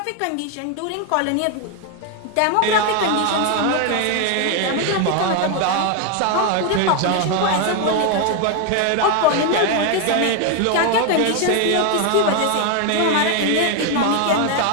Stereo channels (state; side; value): different; both; correlation 0.01